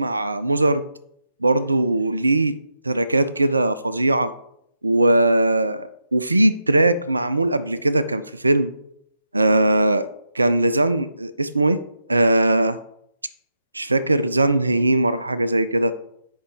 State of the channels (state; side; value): inverted; both; correlation -0.86